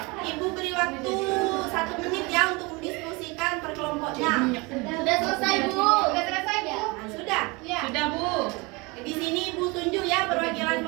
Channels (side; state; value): left; quieter; 26.5 dB